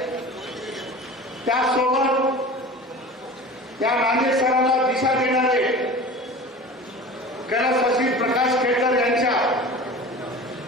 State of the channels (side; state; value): both; normal; correlation 0.37